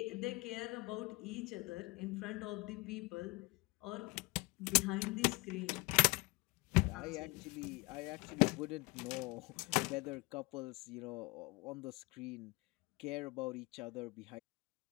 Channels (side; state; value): right; quieter; 25.3 dB